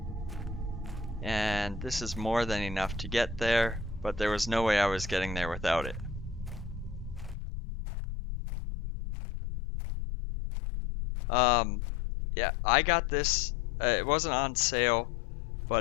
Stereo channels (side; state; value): right; drops out; at 7.4 s